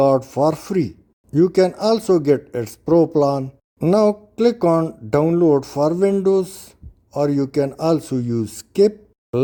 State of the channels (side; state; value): both; identical; correlation 1.00